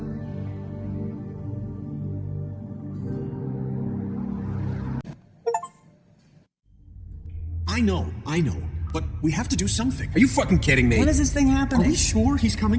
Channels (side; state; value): both; identical; correlation 1.00